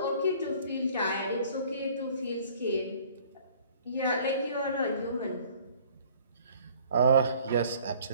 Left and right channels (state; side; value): inverted; both; correlation -0.54